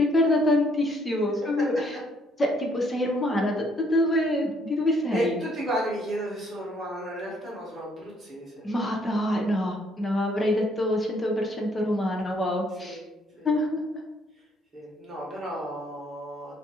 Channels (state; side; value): normal; both; correlation 0.67